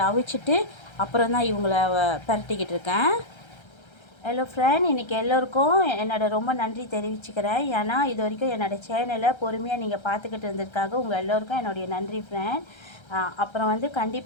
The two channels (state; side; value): late; right; 1.3 ms